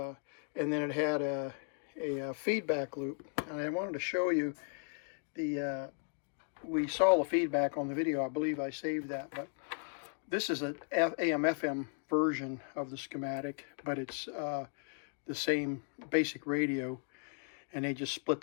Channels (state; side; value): silent; right; 54 dB below the other